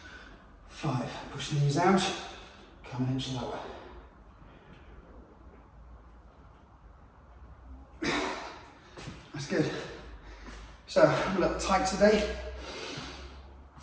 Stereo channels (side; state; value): both; identical; correlation 1.00